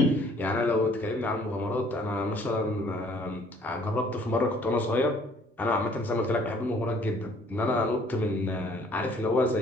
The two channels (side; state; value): both; normal; correlation 0.59